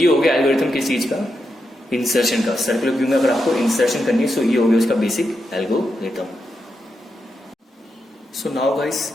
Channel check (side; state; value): both; normal; correlation 0.85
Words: हो गया एल्गोरिथम किस चीज का, इंसर्शन का। सर्कुलर क्यू में अगर आपको इंसर्शन करनी है, सो ये हो गया उसका basic algorithm. So now guys,